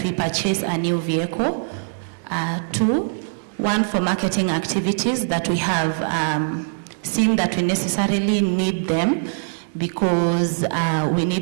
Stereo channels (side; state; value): left; silent; digital silence